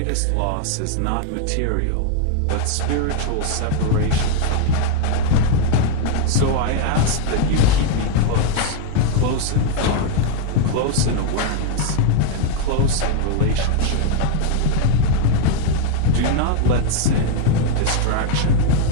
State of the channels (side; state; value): both; different; correlation 0.00